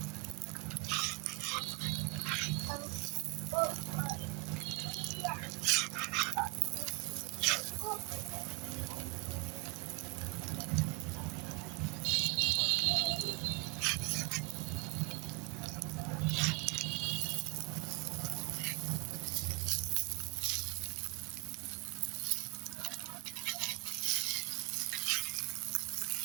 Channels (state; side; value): quieter; left; 27.8 dB